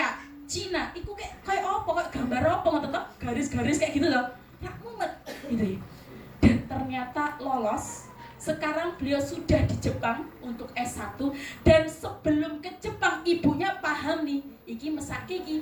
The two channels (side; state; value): both; identical; correlation 1.00